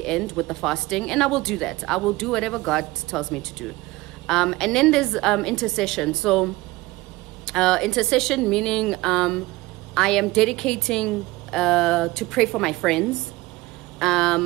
end with the fasting, and I will do that. I will do whatever God tells me to do. And then there's intercession. So intercession meaning I am dedicating to pray for my friends.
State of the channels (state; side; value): quieter; left; 20.0 dB